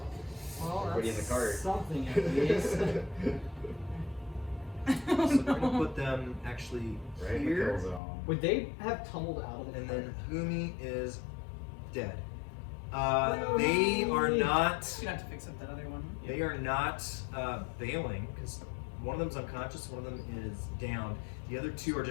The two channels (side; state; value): right; drops out; at 8.0 s